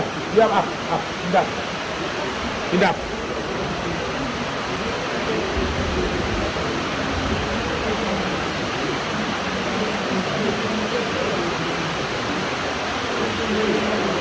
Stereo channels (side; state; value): both; identical; correlation 1.00